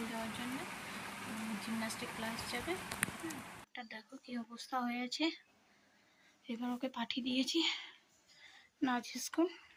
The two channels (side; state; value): both; identical; correlation 1.00